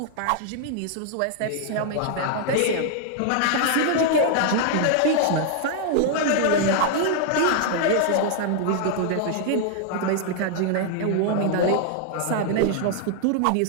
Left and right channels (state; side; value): different; both; correlation -0.01